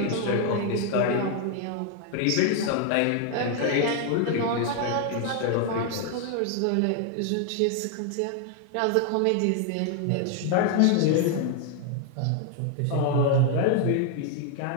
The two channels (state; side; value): different; both; correlation 0.00